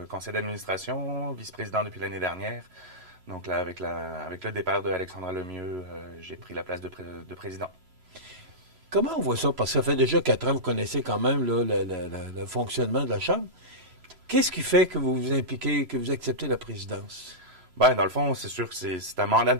conseil d'administration, vice-président depuis l'année dernière. Donc là, avec le départ de Alexandra Lemieux, j'ai pris la place de président. Comment on voit ça? Parce que ça fait déjà 4 ans, vous connaissez quand même là, le fonctionnement de la Chambre. Qu'est-ce qui fait que vous vous impliquez, que vous acceptez la présidence? Ben, dans le fond, c'est sûr que c'est un mandat de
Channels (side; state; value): left; late; 3.0 ms